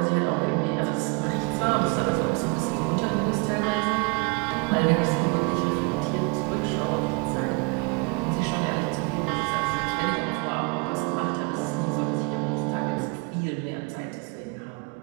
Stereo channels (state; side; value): quieter; left; 30.8 dB